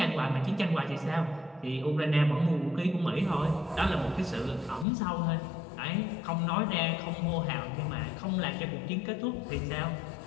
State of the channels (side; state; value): right; drops out; at 4.9 s